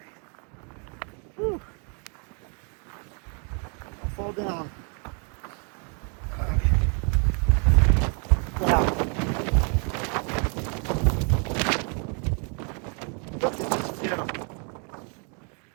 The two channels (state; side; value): quieter; left; 38.3 dB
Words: Whew. I'll fall down. Okay. Wow. Look at this view.